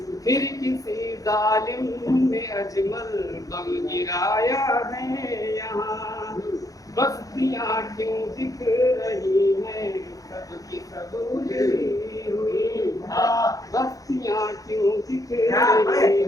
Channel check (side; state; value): right; late; 0.17 ms